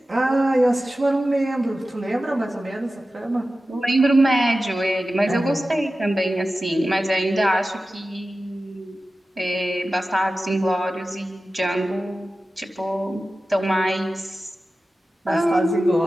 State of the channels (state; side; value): normal; both; correlation 0.94